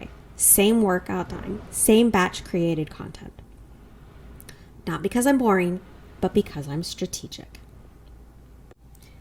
same workout time, same batch created content. Not because I'm boring, but because I'm strategic.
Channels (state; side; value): identical; both; correlation 1.00